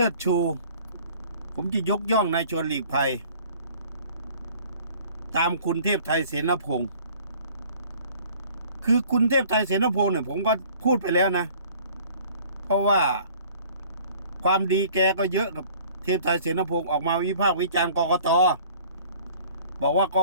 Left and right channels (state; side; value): inverted; both; correlation -0.52